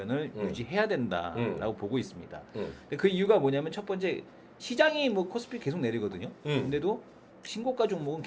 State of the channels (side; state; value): both; identical; correlation 1.00